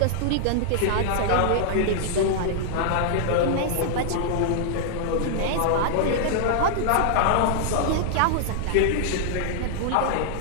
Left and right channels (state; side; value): different; both; correlation -0.01